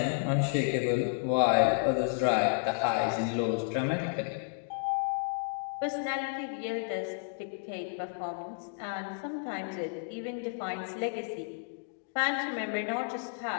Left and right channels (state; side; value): silent; right; digital silence